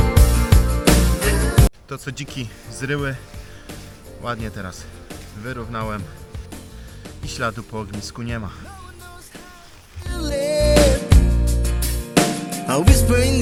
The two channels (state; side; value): identical; both; correlation 1.00